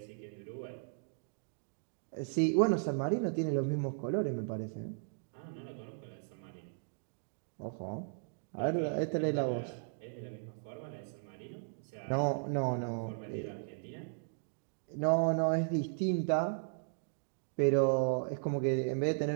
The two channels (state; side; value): silent; left; digital silence